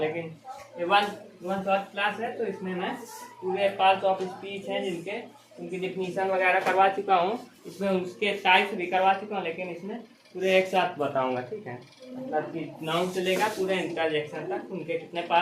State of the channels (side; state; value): both; identical; correlation 1.00